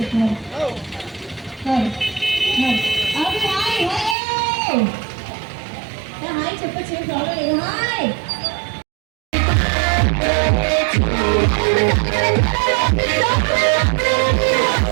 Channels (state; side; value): drops out; left; at 4.2 s